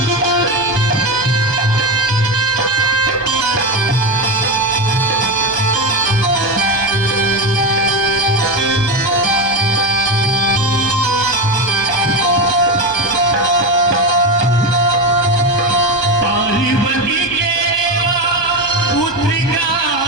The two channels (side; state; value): right; late; 1.2 ms